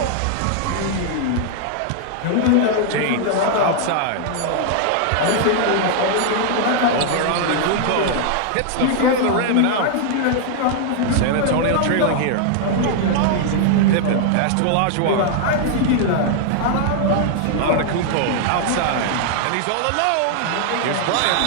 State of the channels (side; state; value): both; different; correlation 0.00